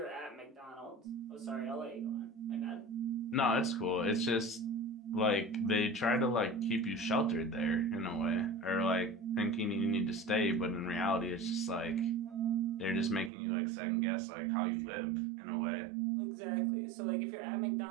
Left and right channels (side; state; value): left; drops out; at 13.3 s